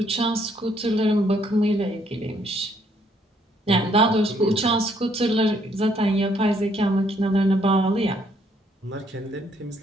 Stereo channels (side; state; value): both; normal; correlation 0.68